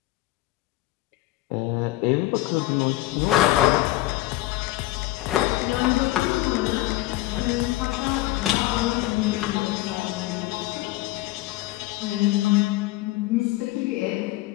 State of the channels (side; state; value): right; quieter; 17.6 dB